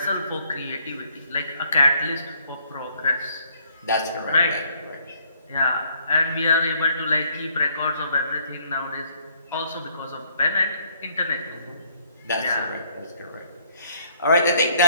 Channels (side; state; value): both; inverted; correlation -0.65